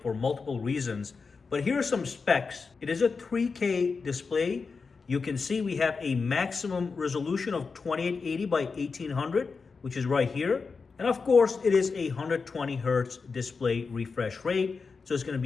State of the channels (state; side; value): quieter; right; 4.8 dB